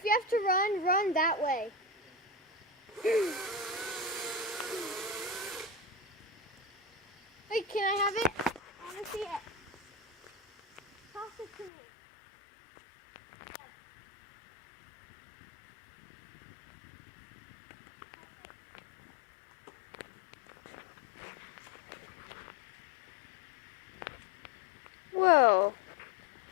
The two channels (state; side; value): drops out; right; at 11.7 s